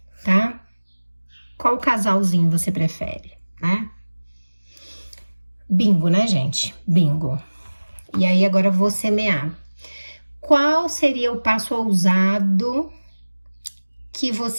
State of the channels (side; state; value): both; inverted; correlation -1.00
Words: tá? Qual casalzinho você prefere, né? Bingo, né, gente? Bingo. E aí, agora eu vou semear. Qual seria o passo ousado que